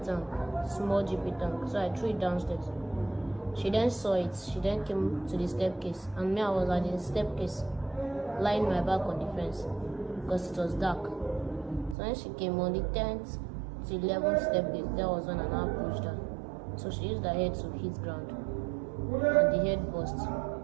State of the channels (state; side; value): drops out; left; at 12.0 s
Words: tank, small GP tank, so I threw it downstairs. She then saw it. She then came to the staircase, and me, I was at the staircase, lying my back on the fence because it was dark. So when she came on the 10th to 11th staircase, there was when I now pushed her. So she used her head to hit ground, and the head burst.